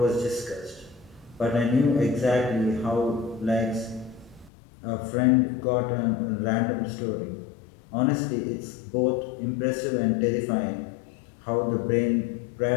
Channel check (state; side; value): drops out; right; at 4.5 s